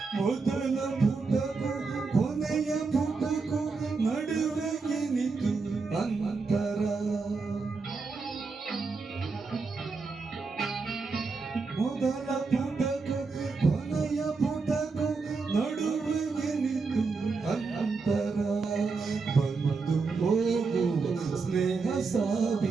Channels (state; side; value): quieter; left; 4.4 dB